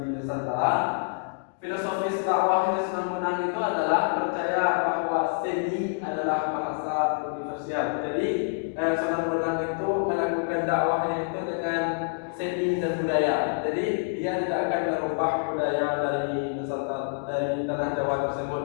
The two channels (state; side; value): silent; right; digital silence